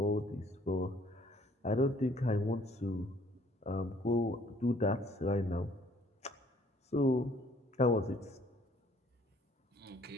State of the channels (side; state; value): both; normal; correlation 0.60